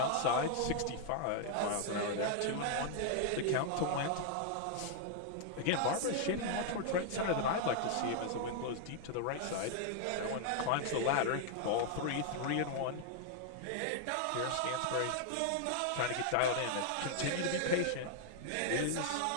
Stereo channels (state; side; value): different; both; correlation 0.00